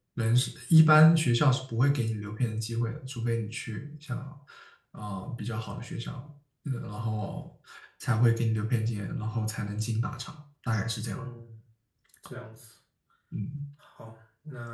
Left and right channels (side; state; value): both; identical; correlation 1.00